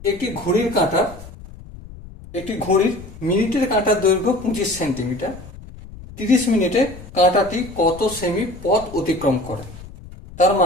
একটি ঘড়ির কাঁটা, একটি ঘড়ির মিনিটের কাঁটার দৈর্ঘ্য 25 সেন্টিমিটার। 30 মিনিটে কাঁটাটি কত সেমি পথ অতিক্রম করে? তার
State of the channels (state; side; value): noise; left; rumble, 16 dB below the sound